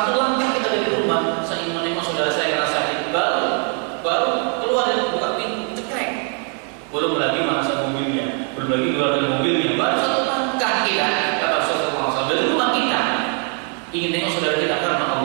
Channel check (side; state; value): left; quieter; 38.0 dB